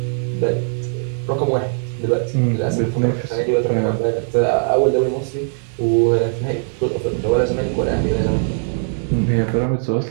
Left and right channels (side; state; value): left; silent; 63 dB below the other